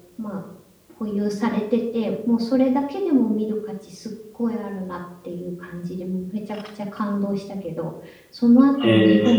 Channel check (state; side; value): identical; both; correlation 1.00